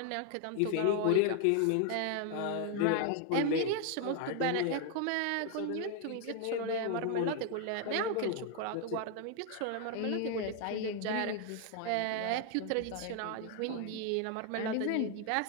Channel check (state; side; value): different; both; correlation 0.00